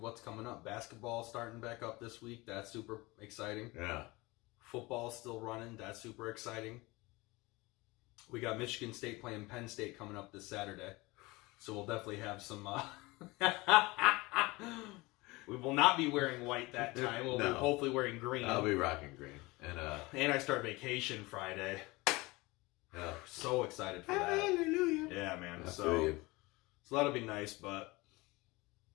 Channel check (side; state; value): right; quieter; 22.8 dB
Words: what's coming up. Basketball starting back up this week. That's super exciting. Yeah. Football still running. That's super exciting. We got Michigan State playing Penn State coming up this Saturday. So we'll definitely have some... We will not be wearing white that time. We'll be hopefully wearing green. I'll be rocking green. And I start vacation Friday. Yeah. So excited for that. Hallelujah. Yeah, man. I So that'll be nice, but...